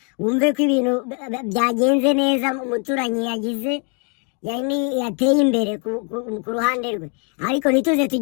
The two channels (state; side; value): quieter; right; 37.4 dB